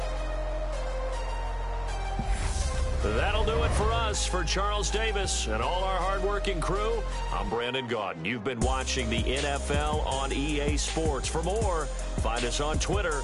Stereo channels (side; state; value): both; identical; correlation 1.00